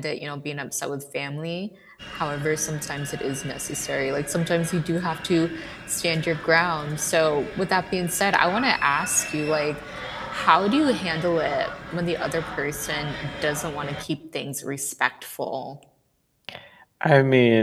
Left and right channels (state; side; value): identical; both; correlation 1.00